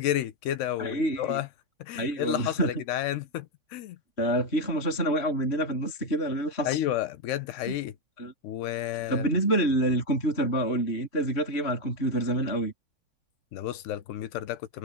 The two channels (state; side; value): late; right; 3.5 ms